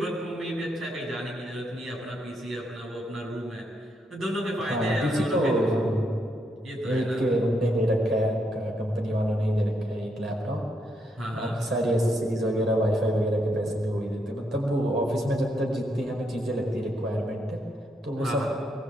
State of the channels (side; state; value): both; normal; correlation 0.78